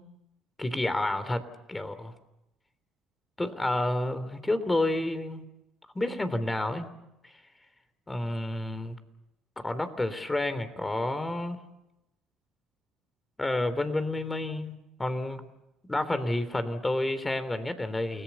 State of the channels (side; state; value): both; normal; correlation 0.93